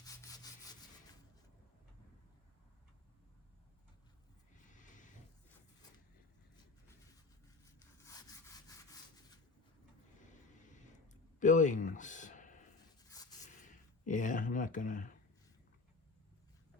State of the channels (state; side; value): quieter; right; 3.8 dB